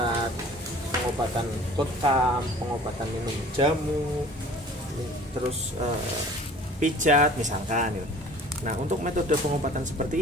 pengobatan bekam, pengobatan minum jamu, terus pijat misalkan. Nah, untuk metode pengobatan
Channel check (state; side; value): normal; both; correlation 0.47